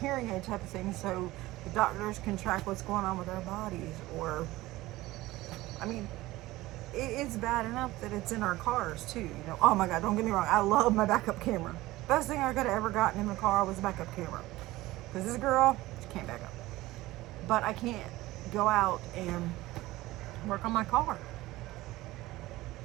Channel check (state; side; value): quieter; left; 18.1 dB